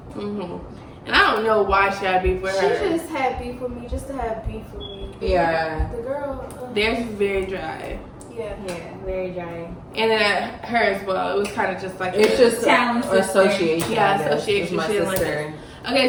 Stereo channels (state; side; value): identical; both; correlation 1.00